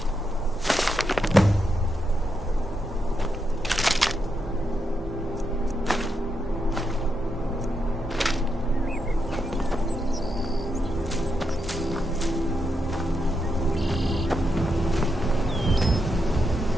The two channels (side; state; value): both; normal; correlation 0.83